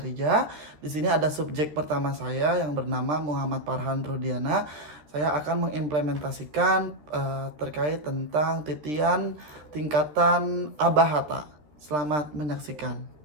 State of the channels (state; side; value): late; left; 13 ms